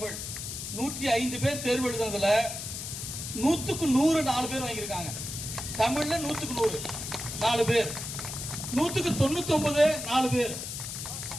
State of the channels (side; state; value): left; noise; hiss, 7 dB below the sound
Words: 105 பேர் தேர்வு எழுதுனதுல 100க்கு 100 4 பேர் வாங்கியிருக்காங்க. தமிழ்ல 100க்கு 100 4 பேர், 100க்கு 99 4 பேர்,